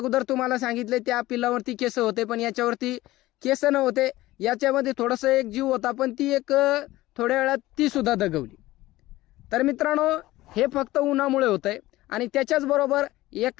तुम्हाला सांगितले त्या पिल्लावरती केस होते, पण याच्यावरती केस नव्हते. याच्यामध्ये थोडंसं एक जीव होता, पण ती एक थोड्या वेळात ती सुद्धा दगवली. तर मित्रांनो, हे फक्त उन्हामुळे होतंय. आणि त्याच्याच बरोबर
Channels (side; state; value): right; quieter; 17.3 dB